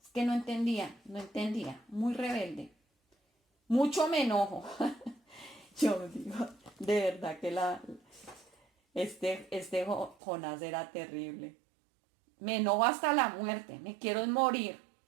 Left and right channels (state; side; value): drops out; left; at 10.2 s